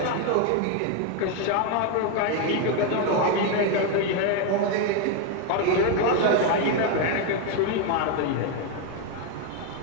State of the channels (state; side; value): different; both; correlation 0.01